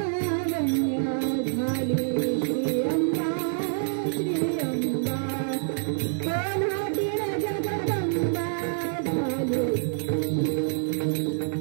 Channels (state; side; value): silent; left; digital silence